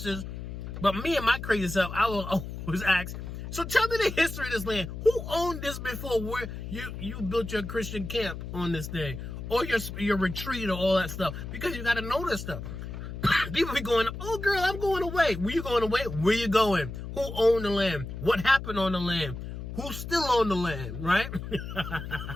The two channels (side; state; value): left; noise; hum, 8 dB below the sound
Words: But me and my crazy self, I will always ask, so tell me the history of this land. Who owned this before where you built your Christian camp on this thing? Or your retreat or all that stuff? Because you got to know this stuff. People be going, oh girl, I'm going away. Where you going away? Where you going? Who owned the land? What happened on the land? Who still owned the land, right?